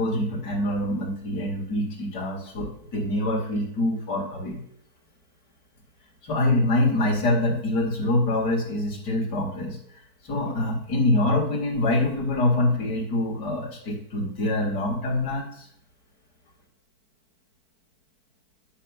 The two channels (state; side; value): late; right; 4.5 ms